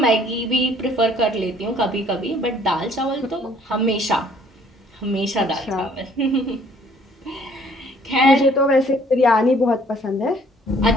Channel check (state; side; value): normal; both; correlation 0.60